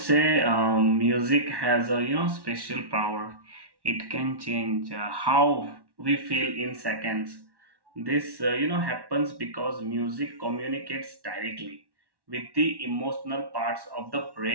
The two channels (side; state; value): left; late; 1.1 ms